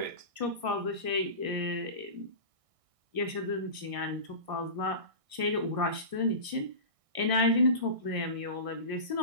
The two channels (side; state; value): left; late; 1.6 ms